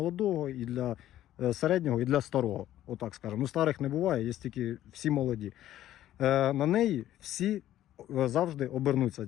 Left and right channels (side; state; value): right; quieter; 13.0 dB